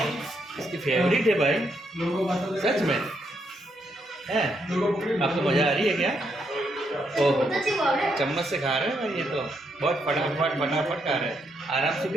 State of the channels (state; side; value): normal; both; correlation 0.78